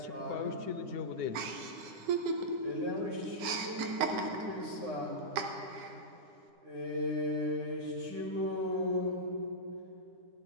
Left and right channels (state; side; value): late; left; 9.8 ms